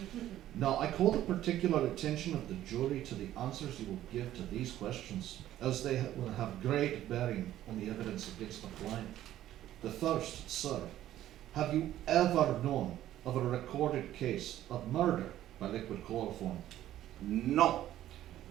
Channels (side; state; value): left; quieter; 13.0 dB